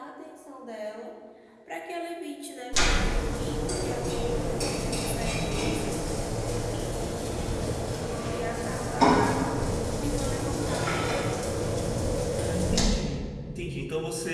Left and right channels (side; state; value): both; identical; correlation 1.00